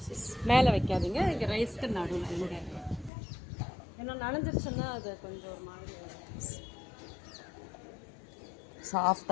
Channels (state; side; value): drops out; right; at 3.1 s